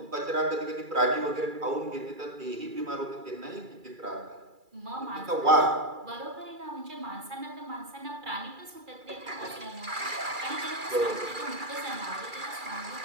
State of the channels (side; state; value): left; late; 2.3 ms